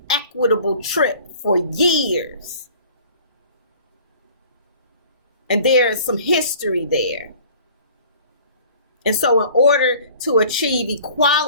trip for years. And there's some history there. And so in order to achieve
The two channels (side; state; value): both; inverted; correlation -0.48